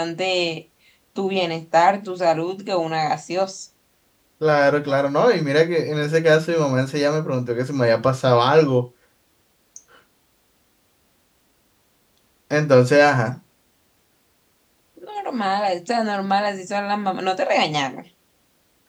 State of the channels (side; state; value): both; identical; correlation 1.00